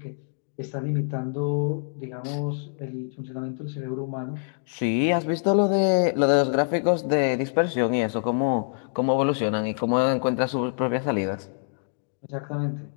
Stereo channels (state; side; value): silent; right; digital silence